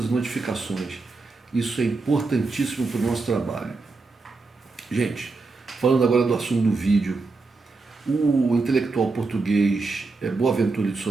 as notificações. Isso é importantíssimo para o nosso trabalho. Gente, falando agora do assunto do vídeo, o intelectual português Boaventura de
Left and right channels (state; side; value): quieter; left; 3.8 dB